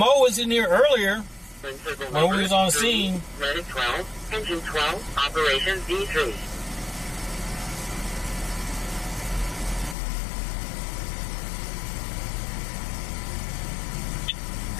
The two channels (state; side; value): drops out; right; at 10.0 s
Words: was in here earlier when we was on scene. Medic 12, Engine 12, Operations D3.